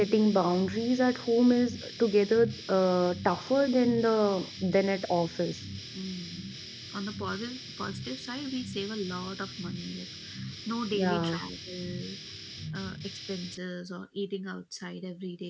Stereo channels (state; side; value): identical; both; correlation 1.00